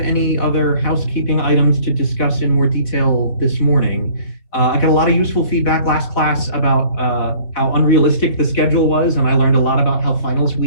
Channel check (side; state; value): right; late; 4.2 ms